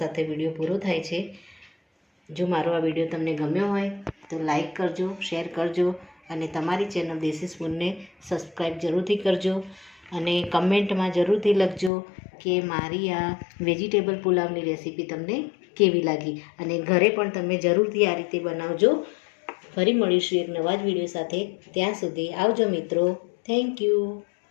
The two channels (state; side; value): drops out; right; at 11.9 s